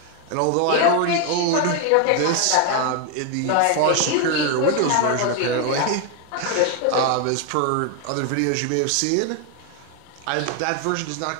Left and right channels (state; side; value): different; both; correlation 0.01